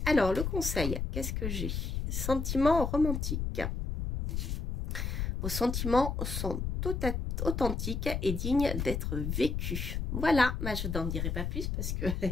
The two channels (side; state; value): left; noise; rumble, 2 dB below the sound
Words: Alors, le conseil, qu'est-ce que j'ai? Sentiments romantiques. Vos sentiments sont authentiques et dignes d'être vécus. Voilà, je n'en dirai pas plus parce que